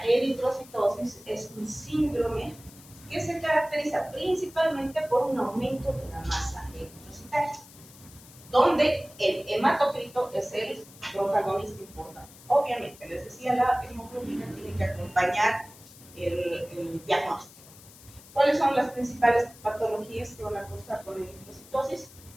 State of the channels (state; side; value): noise; left; hiss, 21 dB below the sound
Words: eritrocitosis es un síndrome que se caracteriza principalmente por un aumento de la masa eritrocitaria, donde el hematocrito es el protagonista importante. Obviamente, les decía, la hemoglobina tiene que acompañar el diagnóstico. ¿Cuáles son las principales patologías que van a causar con eritrocitosis?